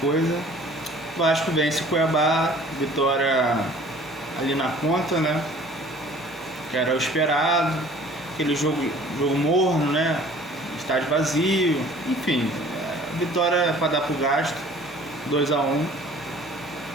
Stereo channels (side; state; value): both; normal; correlation 0.50